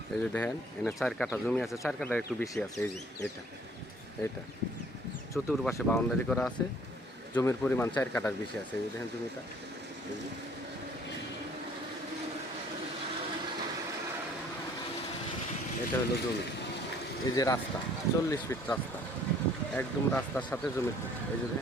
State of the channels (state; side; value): normal; both; correlation 0.58